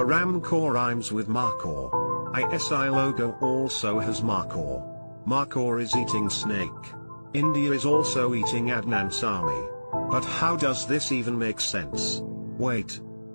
rhymes with Markhor. ISI logo also has Markhor. Markhor is eating snake. India is also eating Adnan Sami. But how does this even make sense? Wait.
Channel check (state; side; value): inverted; both; correlation -1.00